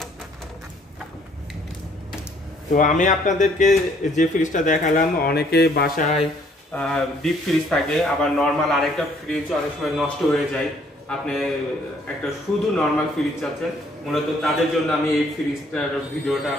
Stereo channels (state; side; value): normal; both; correlation 0.63